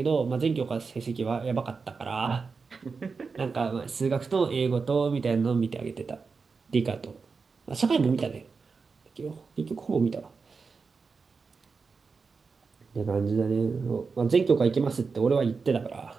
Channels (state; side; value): quieter; left; 4.8 dB